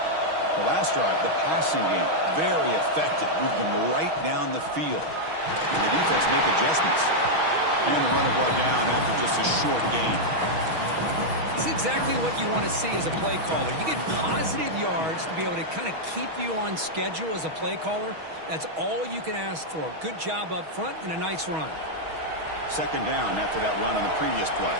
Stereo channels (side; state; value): left; late; 6.3 ms